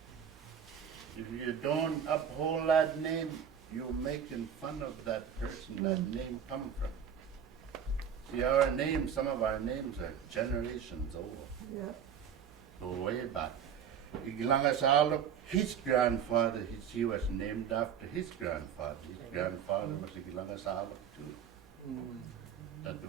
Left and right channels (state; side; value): quieter; left; 8.2 dB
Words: If you don't uphold that name, you're making fun of that person that name come from. See, our names, some of our names are generations old. Yeah. Go way back. Iglangasaluk, his grandfather, he was named after his grandfather. His grandfather was Iglangasaluk too. That